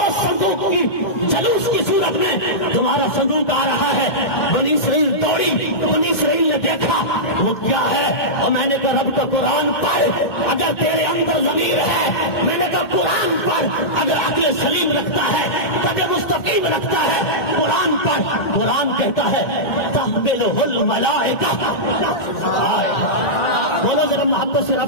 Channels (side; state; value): right; late; 2.1 ms